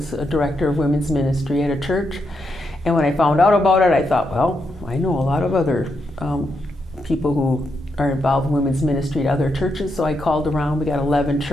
a director of women's ministry at a church. And when I found out about it, I thought, well, I know a lot of other people who are involved in women's ministry at other churches. So I called around. We got 11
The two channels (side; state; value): both; normal; correlation 0.82